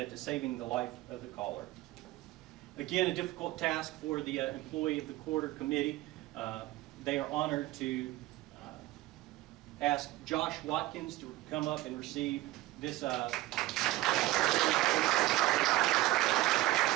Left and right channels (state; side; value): quieter; left; 17.6 dB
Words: to saving the life of the caller. Again, a difficult task for the Employee of the Quarter Committee. They are honored to ask Josh Watkins to come up and receive this